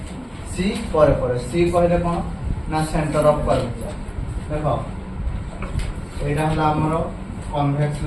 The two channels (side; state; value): both; identical; correlation 1.00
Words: सी परे परे सी कहले कोन ना सेंटर ऑफ कर्वेचर। देखो एटा हला हमरो कन्वेक्स